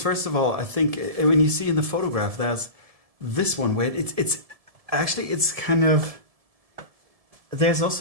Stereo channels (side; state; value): left; late; 1.7 ms